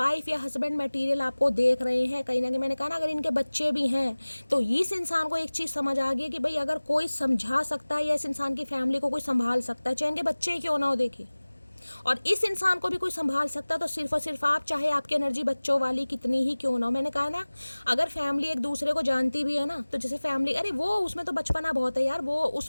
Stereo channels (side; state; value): both; inverted; correlation -1.00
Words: या हस्बैंड मटेरियल आपको देख रहे हैं कहीं ना कहीं। मैंने कहा ना अगर इनके बच्चे भी हैं तो इस इंसान को एक चीज़ समझ आ गई कि भाई अगर कोई समझा सकता है या इस इंसान की फैमिली को कोई संभाल सकता है, चाहे इनके बच्चे ही क्यों ना हो, देखिए, और इस इंसान को भी कोई संभाल सकता है, तो सिर्फ और सिर्फ आप, चाहे आपकी एनर्जी बच्चों वाली कितनी ही क्यों ना हो। मैंने कहा ना अगर फैमिली एक दूसरे को जानती भी है ना, तो जैसे फैमिली, अरे वो उसमें तो बचपना बहुत है यार, वो